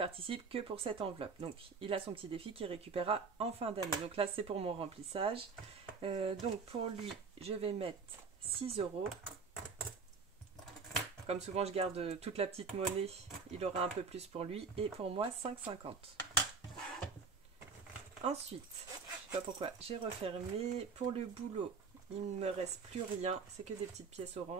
que pour cette enveloppe. Donc il a son petit défi qu'il récupérera en fin d'année. Donc là c'est pour mon remplissage. Donc pour lui, je vais mettre 6 €. Comme souvent je garde toute la petite monnaie, il aura un peu plus pour lui. Et pour moi 5,50 €. Ensuite, je sais pas pourquoi, j'ai refermé. Pour le boulot, il ne me reste plus rien, c'est que des petites pièces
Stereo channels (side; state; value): left; quieter; 5.1 dB